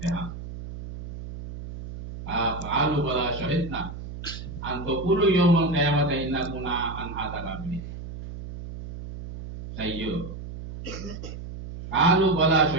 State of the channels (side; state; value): right; noise; hum, 10 dB below the sound